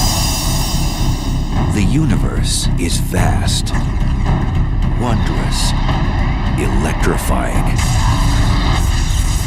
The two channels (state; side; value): identical; both; correlation 1.00